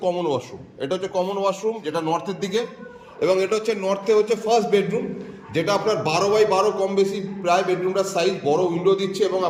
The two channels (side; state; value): both; identical; correlation 1.00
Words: কমন ওয়াশরুম। এটা হচ্ছে কমন ওয়াশরুম, যেটা নর্থের দিকে, এবং এটা হচ্ছে নর্থে হচ্ছে ফার্স্ট বেডরুম, যেটা আপনার 12x12 কম বেশি প্রায় বেডরুমটার সাইজ, বড় উইন্ডো দিচ্ছে এবং